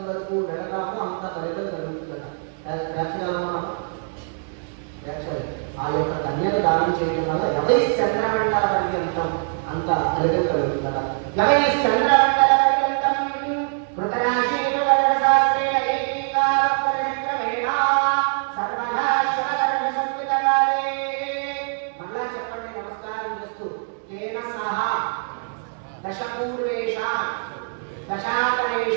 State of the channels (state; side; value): silent; left; 63 dB below the other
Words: వరకు వెళ్ళడామో అంత ఫలితం కలుగుతుందట. ఆ యొక్క కన్యను దానం చేయడం వల్ల ఎవరి చంద్రమండల పర్యంతం అంత ఫలితం కలుగుతుందట. ఎవరి చంద్రమండల పర్యంతం కృతరాశీలు వర్గశాస్త్రేణ ఏకీకారపరిక్రమేణ సర్వదా శివవర్గ సంయుతకాలే. మళ్ళా చెప్పండి నమస్కారం చేస్తూ. తేన సహ దశపూర్వేషాం